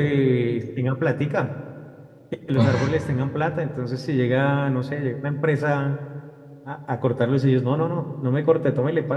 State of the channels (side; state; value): both; identical; correlation 1.00